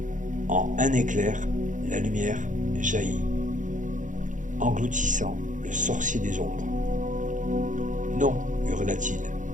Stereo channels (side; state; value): left; late; 0.37 ms